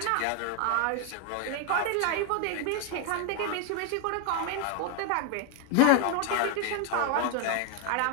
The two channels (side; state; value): both; different; correlation 0.01